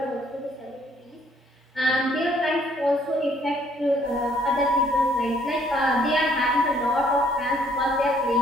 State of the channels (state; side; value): normal; both; correlation 0.64